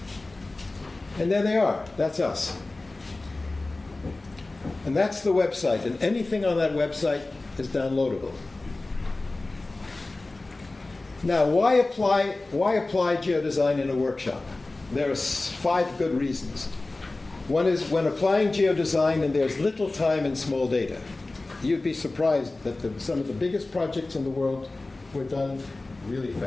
And there they are. That's us. And that's the website. And anything on that website is downloadable. Now, why apply geodesign in a workshop? There are 5 good reasons. One is, when applying geodesign and there's little time and small data, you'd be surprised that some of the biggest projects in the world were done really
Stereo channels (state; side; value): quieter; right; 3.1 dB